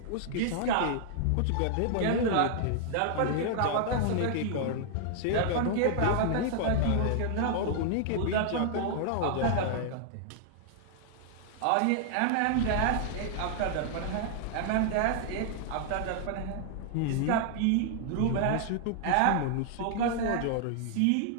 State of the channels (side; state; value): both; different; correlation -0.01